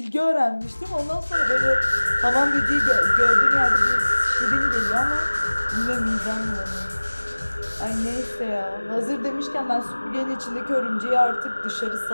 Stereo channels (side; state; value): both; inverted; correlation -1.00